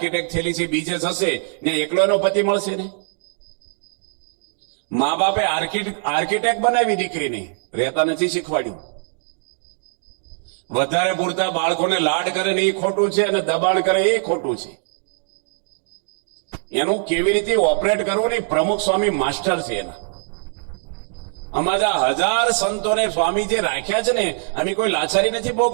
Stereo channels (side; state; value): left; silent; digital silence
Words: થયેલી છે બીજે થશે ને એકલો એનો પતિ મળશે ને. મા બાપે આર્કિટેક્ટ બનાવી દીકરીને, રહેતા નથી શીખવાડ્યું. વધારે પૂરતા બાળકોને લાડ કરે ને એ ખોટું છે અને દબાણ કરે એ ખોટું છે. એનું કેવી રીતે ઓપરેટ કરવું ને પ્રમુખ સ્વામી માસ્ટર છે એના. અમારા 1000 સંતોને સ્વામી જે રાખ્યા છે ને, અમે કોઈ લાચારી નથી